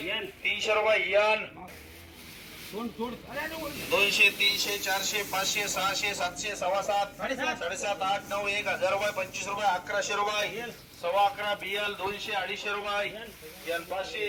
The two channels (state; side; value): identical; both; correlation 1.00